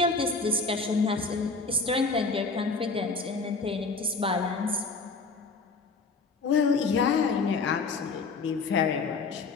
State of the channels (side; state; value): right; quieter; 4.1 dB